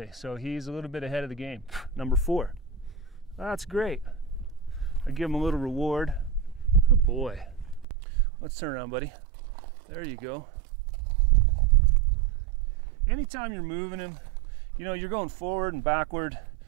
so he's a little bit ahead of the game. Number 4. That's great. I give him a little reward. Good boy. Let's turn around, buddy. There you go. Anytime you're moving him, you know, you're going forward and backward.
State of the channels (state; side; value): drops out; left; at 7.9 s